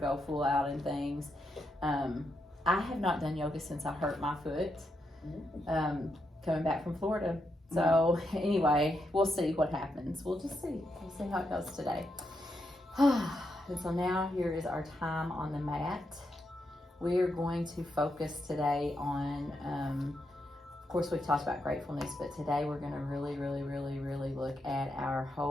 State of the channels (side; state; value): both; normal; correlation 0.82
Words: full out in things, I have not done yoga since I hurt my foot coming back from Florida. So anyway, we'll see what happens. We'll just see. We'll see how it goes today. And so now here is our time on the mat. We are going to focus today on, of course we've talked about gratefulness, but today we're going to really look at our